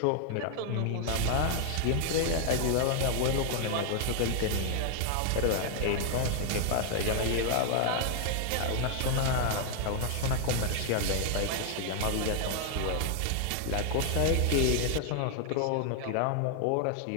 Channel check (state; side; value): different; both; correlation 0.00